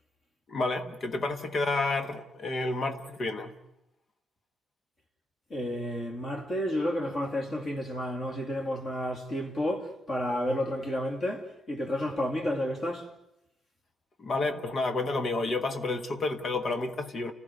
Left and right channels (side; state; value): both; normal; correlation 0.80